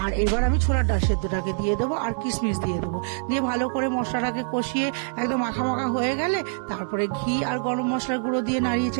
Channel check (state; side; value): silent; left; 62 dB below the other